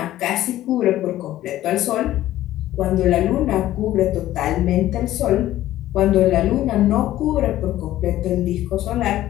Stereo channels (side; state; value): right; quieter; 14.2 dB